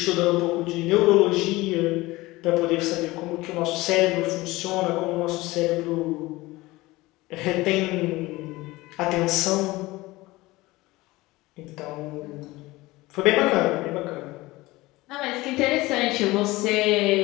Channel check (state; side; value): quieter; right; 20.1 dB